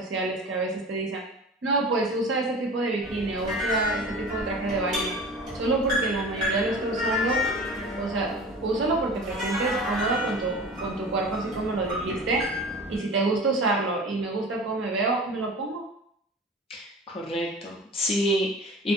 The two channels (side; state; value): both; normal; correlation 0.37